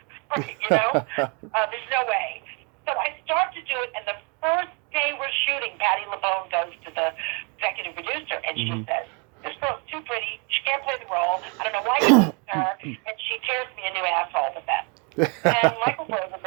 you know? There's no way. So I start to do it, and the first day we're shooting, Patti LuPone goes to the executive producer, and she says, this girl's too pretty. She can't play the role. I don't know why you picked her. And she tears me a new asshole with that. And Michael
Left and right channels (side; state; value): left; quieter; 34.2 dB